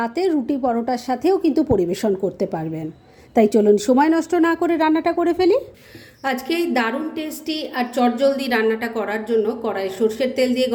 রুটি পরোটার সাথেও কিন্তু পরিবেশন করতে পারবেন। তাই চলুন সময় নষ্ট না করে রান্নাটা করে ফেলি। আজকে এই দারুণ টেস্টি আর চটজলদি রান্নাটা করার জন্য কড়াই সর্ষের তেল দিয়ে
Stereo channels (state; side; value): identical; both; correlation 1.00